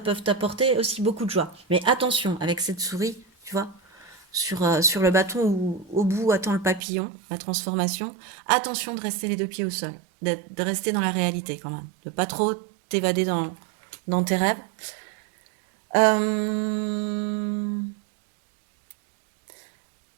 peuvent t'apporter aussi beaucoup de joie. Mais attention, avec cette souris, tu vois, sur le bâton où au bout attend le papillon, la transformation, attention de rester les deux pieds au sol, de rester dans la réalité quand même, de pas trop t'évader dans tes rêves.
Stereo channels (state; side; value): drops out; left; at 6.8 s